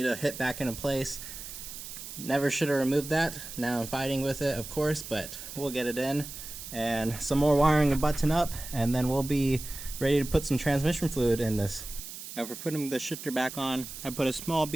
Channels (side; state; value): right; noise; hiss, 11 dB below the sound